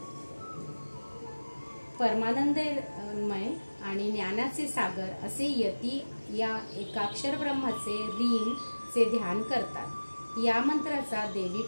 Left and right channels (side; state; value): both; inverted; correlation -1.00